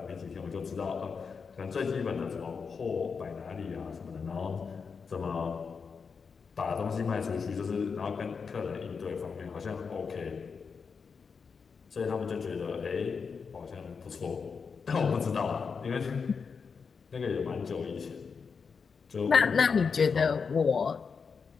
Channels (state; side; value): quieter; right; 5.6 dB